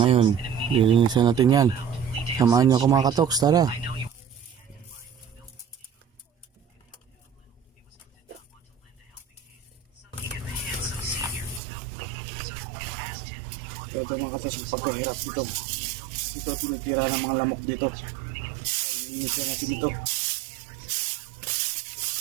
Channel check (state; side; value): drops out; left; at 11.6 s